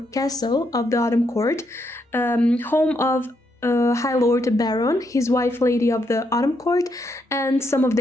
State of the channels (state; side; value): normal; both; correlation 0.78